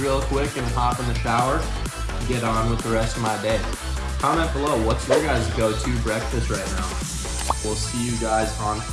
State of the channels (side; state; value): both; identical; correlation 1.00